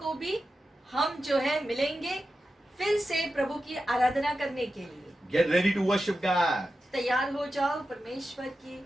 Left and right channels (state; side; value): normal; both; correlation 0.91